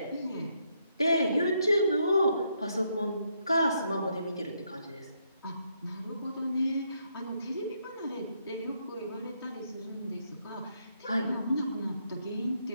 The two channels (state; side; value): inverted; both; correlation -0.76